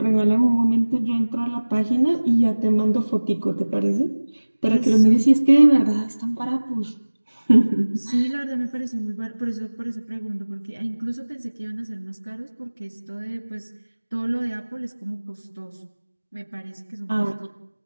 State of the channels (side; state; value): both; inverted; correlation -1.00